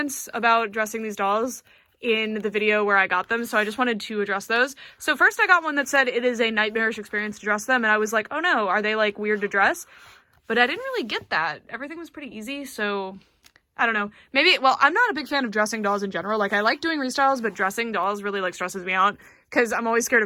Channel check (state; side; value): identical; both; correlation 1.00